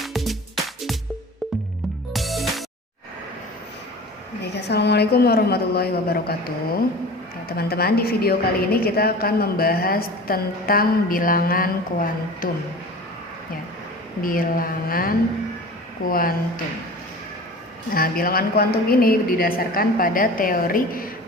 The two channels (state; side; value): normal; both; correlation 0.38